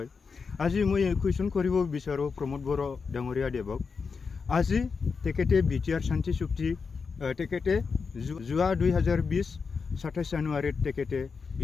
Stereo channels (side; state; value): right; quieter; 5.2 dB